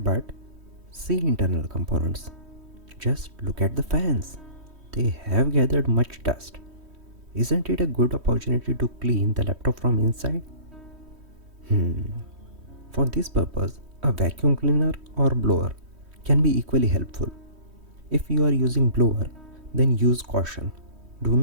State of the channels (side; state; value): left; late; 3.1 ms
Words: see internal components. Just look at the fans. They have gathered much dust. Isn't it a good opportunity to clean the laptop from inside? For this purpose, a vacuum cleaner or blower can be equally helpful. If you are using blower, then use caution. Do